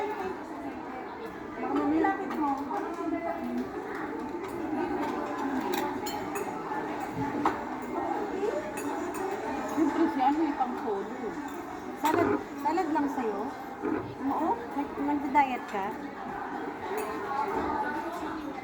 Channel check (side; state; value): both; identical; correlation 1.00